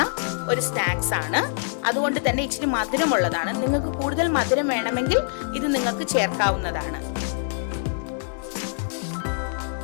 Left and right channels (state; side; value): silent; right; 62 dB below the other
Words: ഒരു സ്നാക്സ് ആണ്. അതുകൊണ്ട് തന്നെ ഇച്ചിരി മധുരമുള്ളതാണ്. നിങ്ങൾക്ക് കൂടുതൽ മധുരം വേണമെങ്കിൽ ഇത് നിങ്ങൾക്ക് ചേർക്കാവുന്നതാണ്.